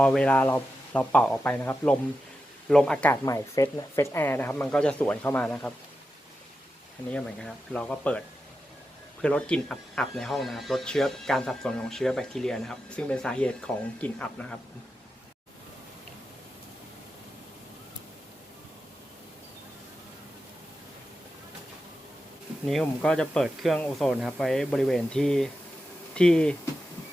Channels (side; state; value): both; normal; correlation 0.90